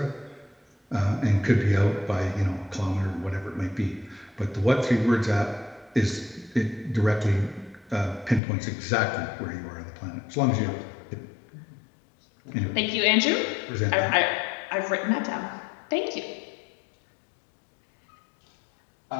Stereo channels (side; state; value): right; drops out; at 8.4 s